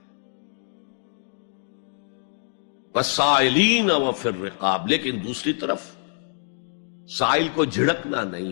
والسائلین وفی الرقاب. لیکن دوسری طرف سائل کو جھڑکنا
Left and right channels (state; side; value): silent; right; digital silence